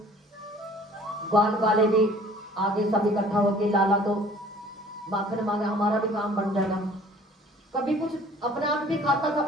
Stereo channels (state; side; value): normal; both; correlation 0.51